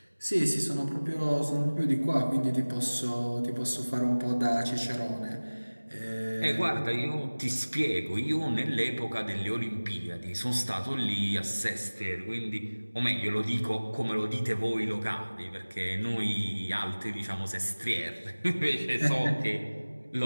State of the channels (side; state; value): both; inverted; correlation -1.00